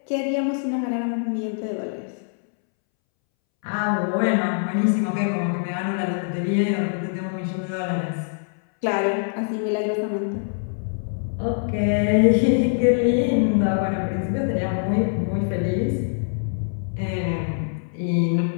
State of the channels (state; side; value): silent; right; 63 dB below the other